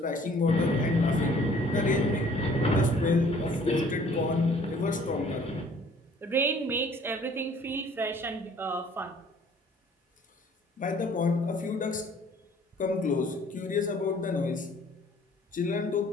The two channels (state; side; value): normal; both; correlation 0.56